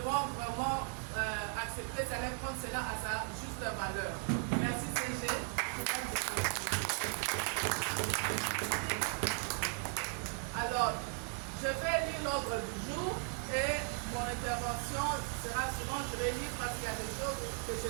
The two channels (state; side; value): quieter; left; 38.1 dB